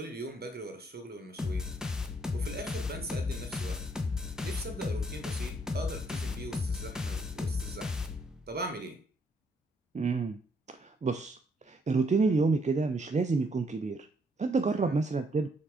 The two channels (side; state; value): both; normal; correlation 0.71